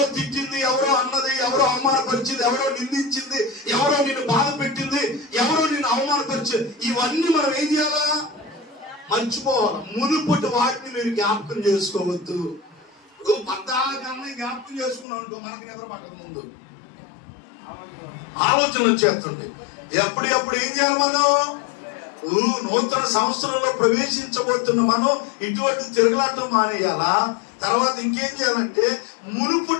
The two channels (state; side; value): drops out; right; at 15.1 s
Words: తిట్టింది, ఎవరో అన్నది, ఎవరో అవమానపరిచింది, ఎవరో నిందించింది, ఎవరో నిన్ను బాధ పెట్టింది, ఎవరో నిన్ను అవమానపరిచింది, ఇవన్నీ మనం ఏం చేయాలా? మర్చిపోవాలి. మునుపటి వాటిని మీరు జ్ఞాపకం చేసుకోవద్దు. పద్దాకన్నా జ్ఞాపకం చేసుకున్నాం అనుకో, మనకి నిద్ర పట్టక ముందు ఆలోచన వచ్చేస్తుంది. ఎప్పుడు ఏం చేయాలి మనం? నూతన సంవత్సరంలో ప్రవేశించబోతున్న మనం ఇటువంటి తిరగలాటం మానేయాలా? తర్వాత ఇంకేం చేయాలంటే